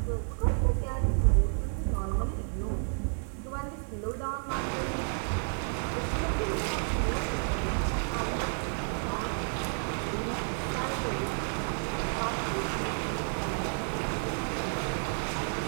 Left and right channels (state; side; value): silent; left; 57 dB below the other